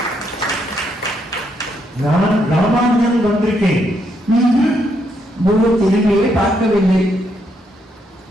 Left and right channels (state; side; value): normal; both; correlation 0.76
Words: நான் ராமானுஜன் வந்திருக்கேன். குரு திரும்பியே பார்க்கவில்லை.